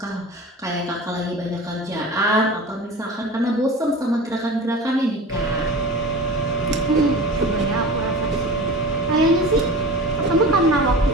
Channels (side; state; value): both; normal; correlation 0.35